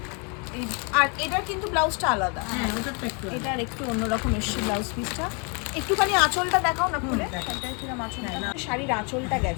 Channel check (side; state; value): right; quieter; 35.1 dB